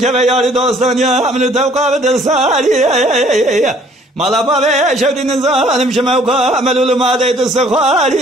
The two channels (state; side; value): normal; both; correlation 0.58